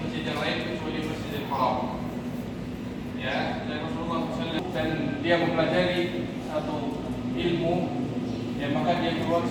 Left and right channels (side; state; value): both; identical; correlation 1.00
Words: yang lain kecuali Masjidil Haram. Ya, dan Rasulullah SAW dan dia mempelajari satu ilmu, ya maka dia keluar